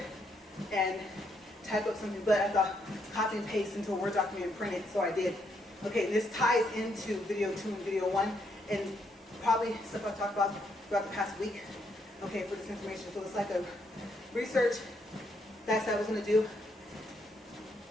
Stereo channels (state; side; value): normal; both; correlation 0.75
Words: and type up something, but I thought copy and paste into a Word document and print it, so I did. Okay, this ties into video 2 and video 1, and probably stuff I've talked about throughout the past week, okay, for this information. So it's like a research that I was going to do,